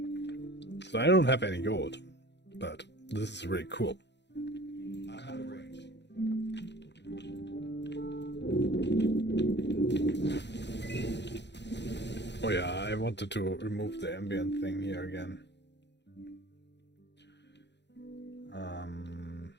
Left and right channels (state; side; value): late; right; 0.51 ms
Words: So I don't have any gold, but this is really cool. I'm out of range. Oh yeah, I wanted to remove the ambient thing here again.